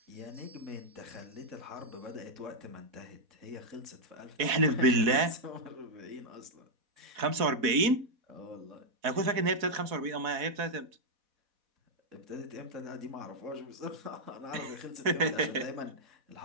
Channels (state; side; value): late; left; 4.1 ms